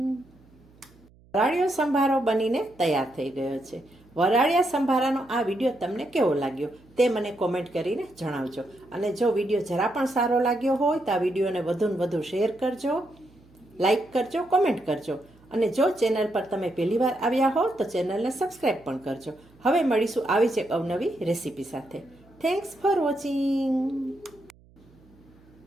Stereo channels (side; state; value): right; noise; hum, 28 dB below the sound